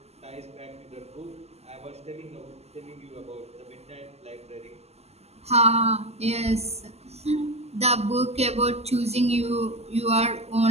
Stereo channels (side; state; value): left; late; 0.30 ms